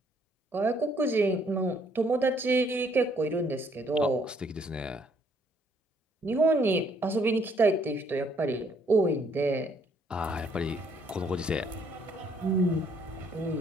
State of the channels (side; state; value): both; normal; correlation 0.66